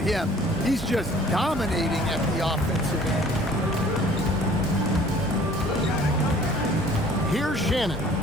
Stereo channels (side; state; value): both; normal; correlation 0.52